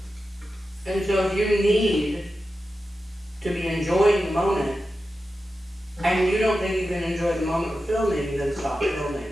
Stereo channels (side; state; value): both; normal; correlation 0.92